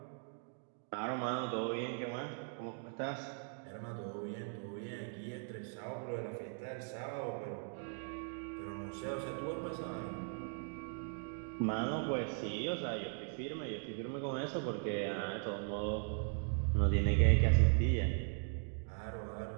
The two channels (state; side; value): silent; left; 52 dB below the other